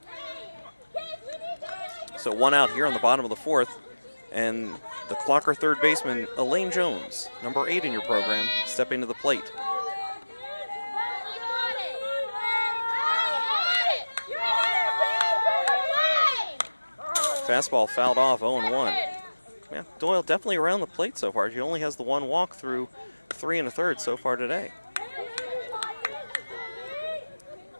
So 1 out here on the bottom of the 4th, and the Clocker third baseman, Elaine Jones, number 8 in your program, stepping to the plate. Fastball fouled off, 0-1. Yeah, Doyle definitely around the plate so far. She only has the 1 walk through 3 1/3 so far today.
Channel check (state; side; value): inverted; both; correlation -1.00